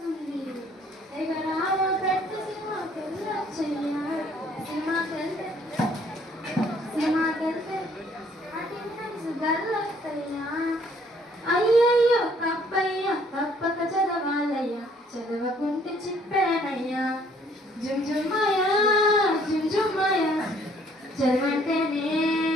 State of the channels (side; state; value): both; normal; correlation 0.62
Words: ఎగరావ పెట్టు సినిమాకెళ్ళొచ్చయ్యా, సినిమాకెళ్తే గల్లొస్తయ్యా. అయ్యయ్యో తప్పయ్యా, తప్పక చదవాలయ్యా, చదవకుంటే చిప్పేనయ్యా. జుంజుమ్మయ్య జుంజుమ్మయ్య చదవంటేనే